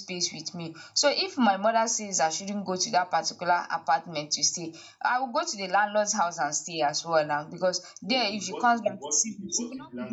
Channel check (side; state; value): both; identical; correlation 1.00